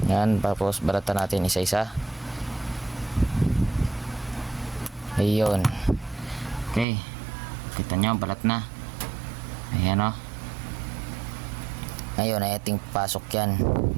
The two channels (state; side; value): drops out; left; at 6.9 s